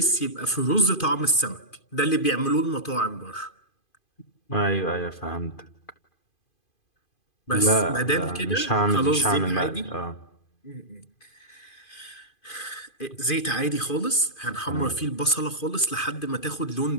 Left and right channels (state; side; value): late; right; 2.5 ms